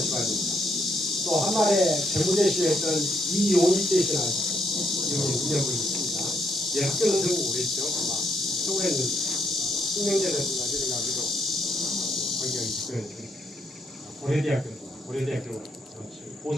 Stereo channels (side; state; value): both; normal; correlation 0.73